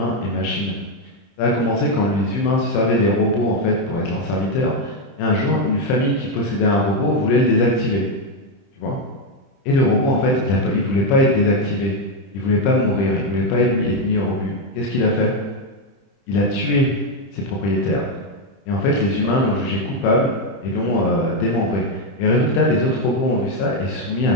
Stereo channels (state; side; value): late; right; 30 ms